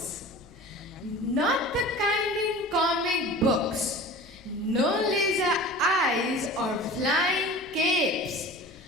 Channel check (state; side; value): noise; left; rumble, 29 dB below the sound